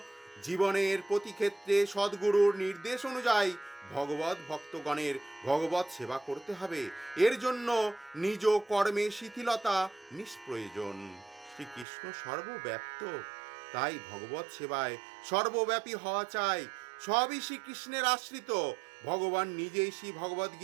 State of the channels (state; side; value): drops out; left; at 11.9 s